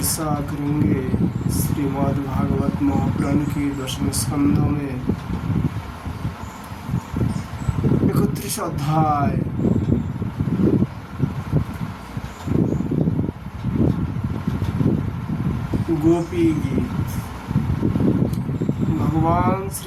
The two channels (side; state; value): both; identical; correlation 1.00